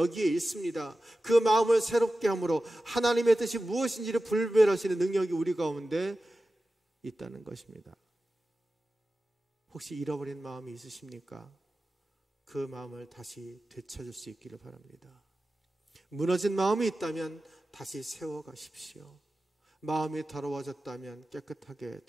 있습니다. 그 마음을 새롭게 함으로 하나님의 뜻이 무엇인지를 분별하시는 능력이 우리 가운데 있다는 것입니다. 혹시 잃어버린 마음이 있으십니까? 그 마음을 다시 되찾을 수 있기를 바랍니다. 무너진 마음이 있다면 다시 세워가십시오. 마음이 더러워졌다면 깨끗하게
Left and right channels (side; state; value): both; normal; correlation 0.94